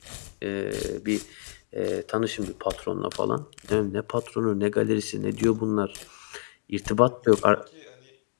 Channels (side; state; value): right; silent; digital silence